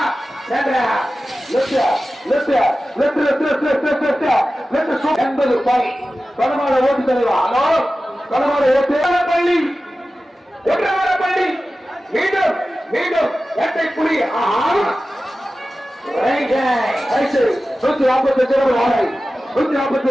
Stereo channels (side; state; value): both; normal; correlation 0.95